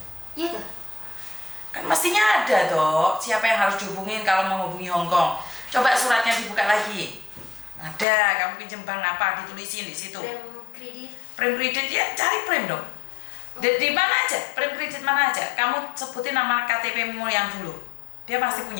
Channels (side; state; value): right; drops out; at 8.1 s